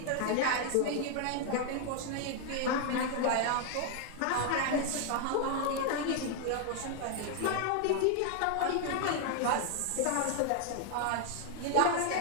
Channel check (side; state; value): both; different; correlation 0.00